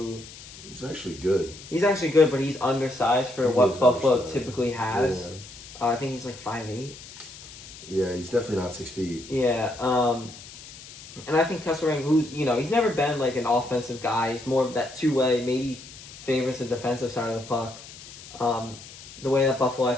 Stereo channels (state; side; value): noise; left; hiss, 17 dB below the sound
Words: He's actually good. He's actually good, but he's undersized for what Buffalo typically has. Yeah. I think he's like 5'8". Yeah, he's definitely not 6 feet. Yeah. And I think Kesselring, who's, he's never been like an offensive guy. He's more of that two-way, maybe favors the defensive side of the puck. The way that Buffalo, I